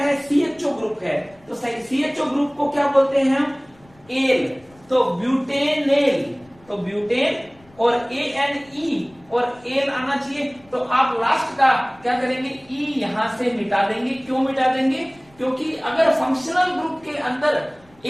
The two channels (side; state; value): left; noise; rumble, 29 dB below the sound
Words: CHO ग्रुप है। तो CHO ग्रुप को क्या बोलते हैं हम, एल, तो ब्यूटेनेल, तो ब्यूटेन और ANE और एल आना चाहिए। तो आप लास्ट का क्या करेंगे, ई यहां से मिटा देंगे। क्यों मिटा देंगे, क्योंकि अगर फंक्शनल ग्रुप के अंदर